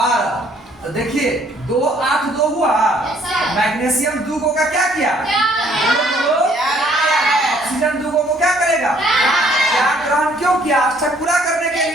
तो देखिए 2 8 2 हुआ। मैग्नीशियम 2 को का क्या किया? ऑक्सीजन 2 को क्या करेगा? त्याग ग्रहण क्यों किया? अष्टक पूरा करने के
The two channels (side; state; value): both; normal; correlation 0.62